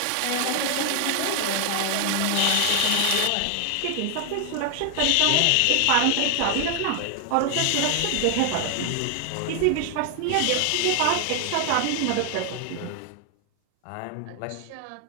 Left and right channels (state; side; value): different; both; correlation 0.00